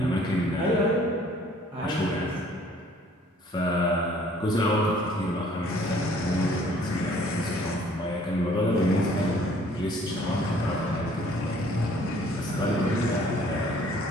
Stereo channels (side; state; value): both; normal; correlation 0.57